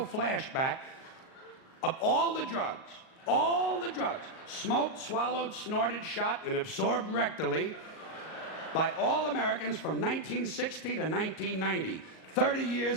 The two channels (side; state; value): right; late; 38 ms